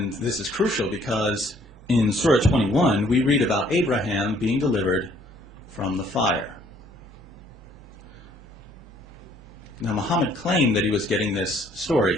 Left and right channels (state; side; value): normal; both; correlation 0.62